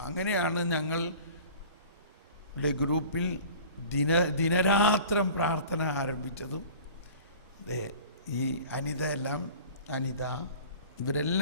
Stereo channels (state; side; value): inverted; both; correlation -0.43